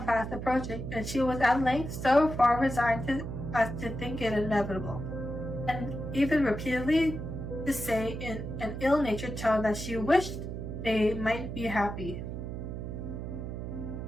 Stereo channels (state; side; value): noise; right; hum, 6 dB below the sound